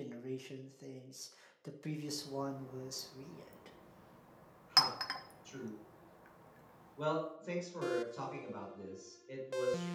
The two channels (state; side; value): identical; both; correlation 1.00